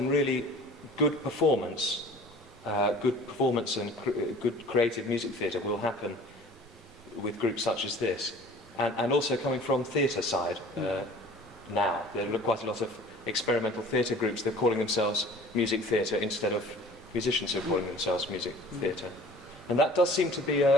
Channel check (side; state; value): both; normal; correlation 0.47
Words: really good performance and good creative music theatre will happen with groups such as this, and also coming from theatre side now. There are quite a lot of experimental theatre groups. They're calling themselves music theatre instead of musicians who are calling themselves music theatre, and that does seem to be